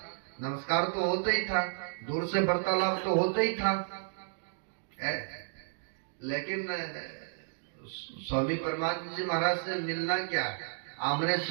नमस्कार तो होता ही था, दूर से वार्तालाप तो होता ही था। लेकिन स्वामी परमानंद जी महाराज से मिलना क्या, आमने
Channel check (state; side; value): silent; left; digital silence